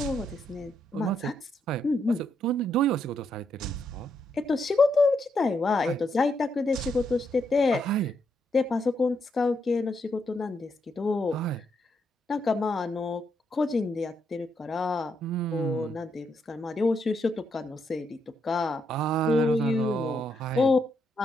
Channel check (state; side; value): normal; both; correlation 0.78